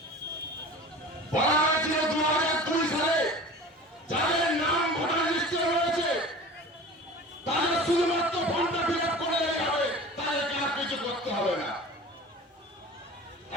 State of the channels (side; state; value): both; normal; correlation 0.38